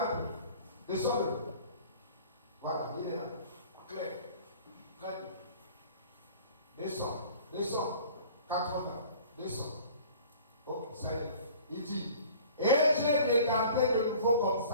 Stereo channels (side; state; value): both; inverted; correlation -0.47